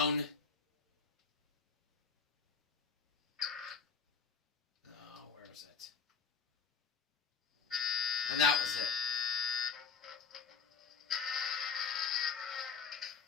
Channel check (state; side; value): quieter; right; 5.8 dB